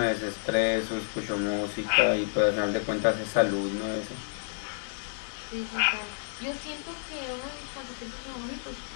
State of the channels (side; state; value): right; silent; digital silence